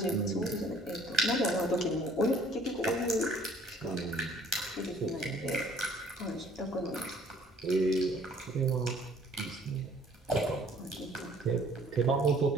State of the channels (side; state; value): both; normal; correlation 0.56